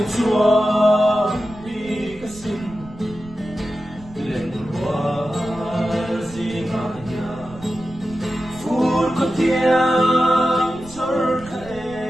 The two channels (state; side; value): noise; right; rumble, 20 dB below the sound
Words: chua đi cái xin lên lúa gì mà nhà phút có tiếng thở